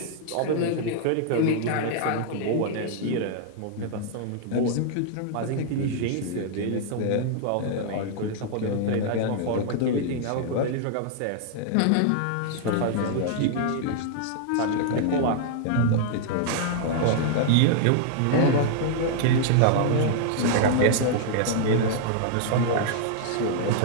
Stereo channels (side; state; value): both; different; correlation -0.01